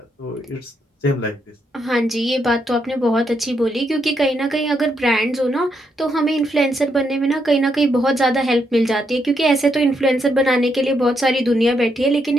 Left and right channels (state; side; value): normal; both; correlation 0.78